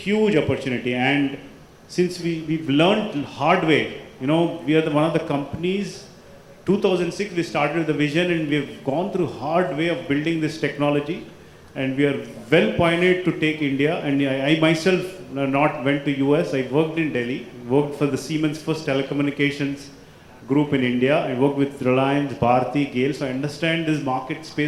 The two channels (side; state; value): both; identical; correlation 1.00